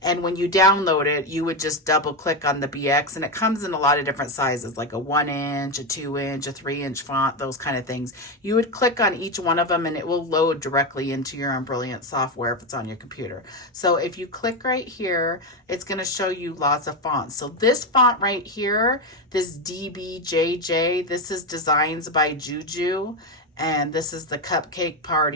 And when you download it, you would just double click on the BX, and it comes in a lot of different sizes, like a 1-inch, a 2-inch, a 3-inch font, those kind of things. You would click on each one of them and it will load directly into your Embrilliance software if it's on your computer. So if you click right here, it's going to show you lots of fonts. So this font right here, this DBJJ, this is Designs by Juju, and this is the Cupcake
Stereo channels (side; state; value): both; normal; correlation 0.11